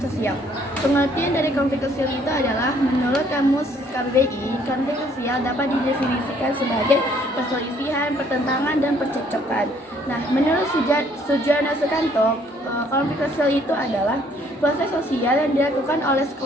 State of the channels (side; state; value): both; normal; correlation 0.63